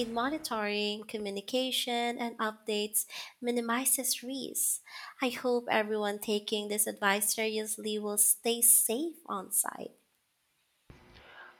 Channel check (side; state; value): both; identical; correlation 1.00